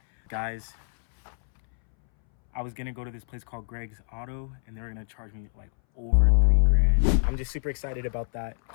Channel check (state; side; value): silent; right; 61 dB below the other